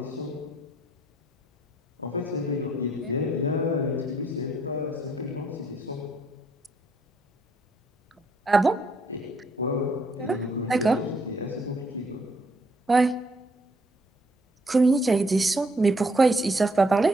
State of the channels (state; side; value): normal; both; correlation 0.69